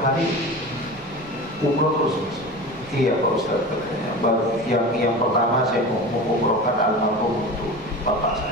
umroh terus Mas? Iya Pak Ustaz, katanya. Yang pertama saya mau umrohkan almarhum untuk bapak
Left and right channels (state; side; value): normal; both; correlation 0.31